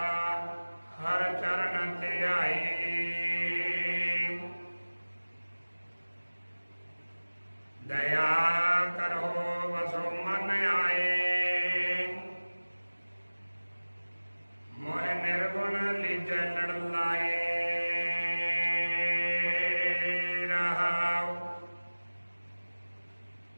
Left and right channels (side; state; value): both; inverted; correlation -1.00